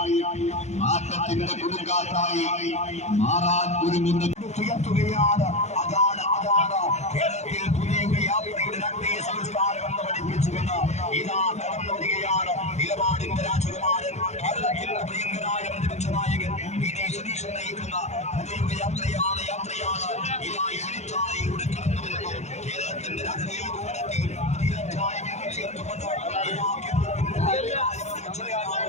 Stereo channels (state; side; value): late; right; 0.33 ms